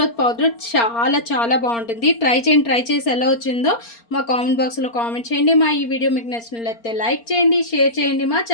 పౌడర్ చాలా చాలా బాగుంటుంది. ట్రై చేయండి. ట్రై చేసి ఎలా వచ్చిందో మా కామెంట్ బాక్స్లో కామెంట్ చేయండి. మా ఈ వీడియో మీకు నచ్చినట్లయితే లైక్ చేయండి, షేర్ చేయండి, మా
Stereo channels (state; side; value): late; right; 4.3 ms